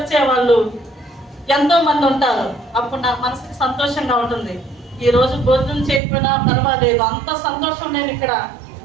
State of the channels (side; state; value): left; drops out; at 6.0 s